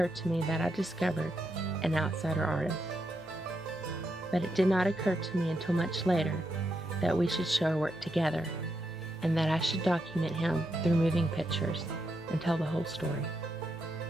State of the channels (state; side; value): noise; right; hum, 26 dB below the sound